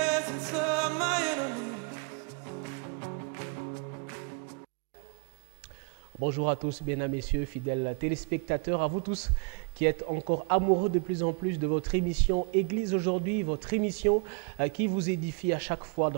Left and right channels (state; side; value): quieter; left; 38.1 dB